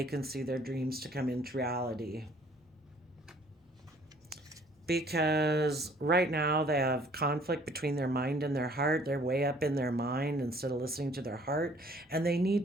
can see their dreams to come into reality. Because right now they have conflict between their mind and their heart. They're way up in their mind instead of listening to their heart. And they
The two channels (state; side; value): normal; both; correlation 0.57